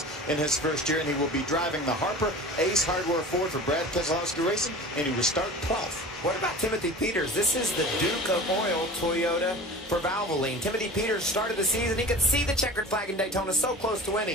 in his first year, and he will be driving the Harper Ace Hardware Ford for Brad Keselowski Racing, and he will start 12th. What about Timothy Peters? This is the Duke of Oil Toyota for Valvoline. Timothy Peters started the season. He could see the checkered flag in Daytona, so close to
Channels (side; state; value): both; normal; correlation 0.37